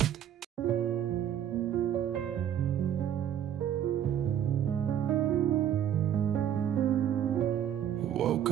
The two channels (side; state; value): left; quieter; 10.0 dB